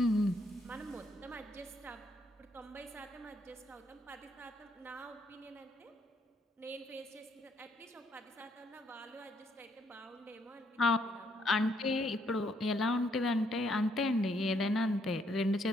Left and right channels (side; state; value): both; normal; correlation 0.72